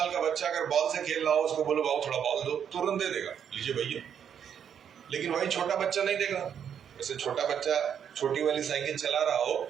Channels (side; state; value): left; quieter; 8.4 dB